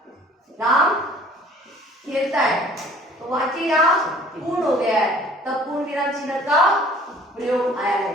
राम खेलता है, तो वाक्य यहाँ पूर्ण हो गया है, तब पूर्ण विराम चिन्ह का प्रयोग आया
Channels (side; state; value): both; normal; correlation 0.53